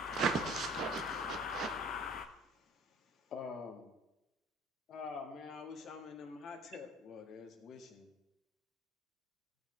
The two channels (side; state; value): both; normal; correlation 0.49